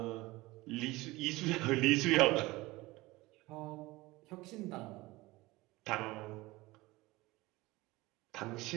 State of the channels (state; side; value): quieter; left; 20.5 dB